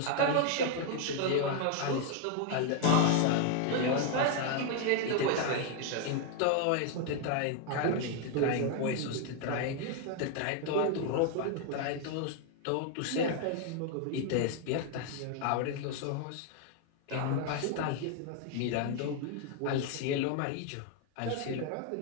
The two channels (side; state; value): both; different; correlation 0.01